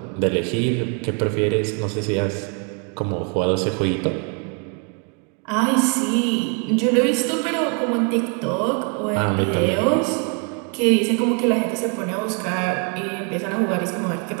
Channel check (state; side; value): quieter; left; 37.7 dB